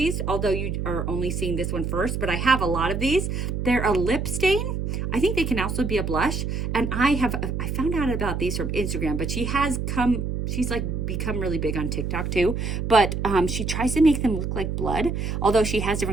although you are only seeing this one first, but I have a lot of these. They're a lip stain. I think they can also be a blush. And I found out about these from Instagram, but she's like become really big on TikTok too. But she tries to make them look like blood, although she has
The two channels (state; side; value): noise; right; hum, 2 dB below the sound